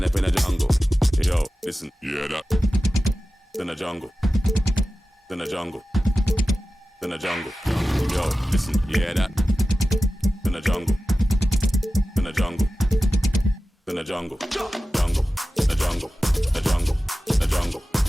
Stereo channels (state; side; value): normal; both; correlation 0.95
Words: up in a jungle. Yo, listen, you hear that? In the jungle. In the jungle. In the jungle. Yo, listen, you hear that? In the jungle. In the jungle. In the jungle. Jungle. The jungle. The jungle. The jungle.